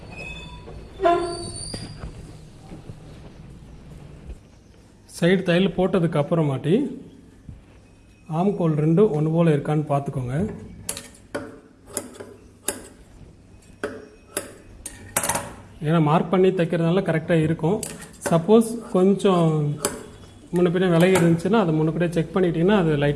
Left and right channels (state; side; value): identical; both; correlation 1.00